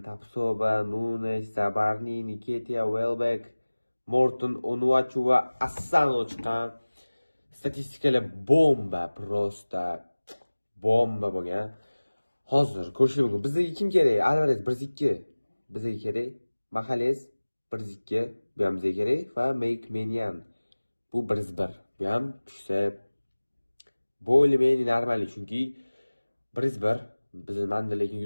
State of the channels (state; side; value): inverted; both; correlation -1.00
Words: Tapsoba, Nunes, Zabarni, Nketiah, Welbeck, Morton, Onuachu va Asano chiqqan. Statistikalar bomba, prosta bomba bo'lgan. Hozir ko'rishingiz mumkin. Bizga kim kerak? Alvarez 1-2. Bizga kerak. Magalhaes 1-2, bu ham bizga kerak va Meynan bu 1-1. Bu ham tushsa bo'lmaydi normal, chunki 1-1 bizmanda lekin